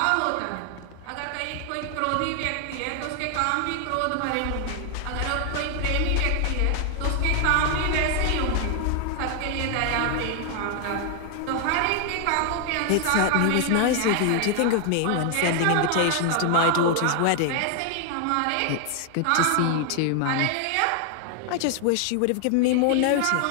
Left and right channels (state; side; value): different; both; correlation 0.00